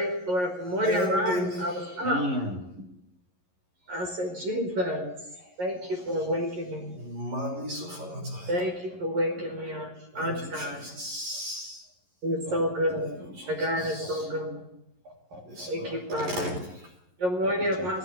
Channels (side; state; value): left; late; 11 ms